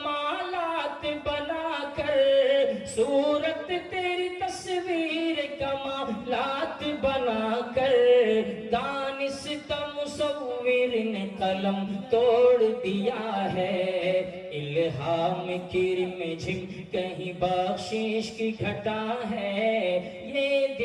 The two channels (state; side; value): identical; both; correlation 1.00